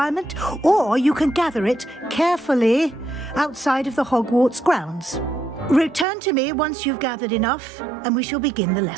or you can gather it carefully outside of the Hogwarts grounds. Return to me once you've gathered enough, and we shall begin the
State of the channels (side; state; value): left; drops out; at 6.1 s